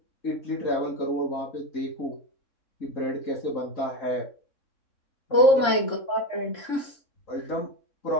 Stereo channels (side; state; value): right; late; 3.6 ms